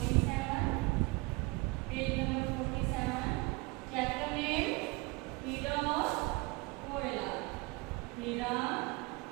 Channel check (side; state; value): left; quieter; 25.8 dB